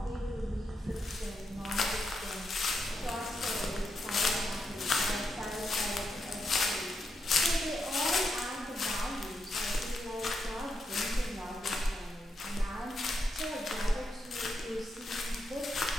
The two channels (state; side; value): normal; both; correlation 0.83